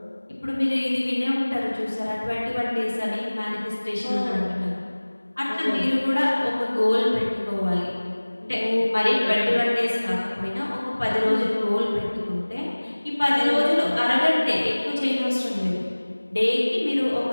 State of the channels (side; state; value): both; inverted; correlation -1.00